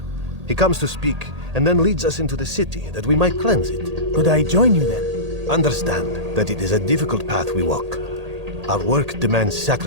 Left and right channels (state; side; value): late; left; 1.8 ms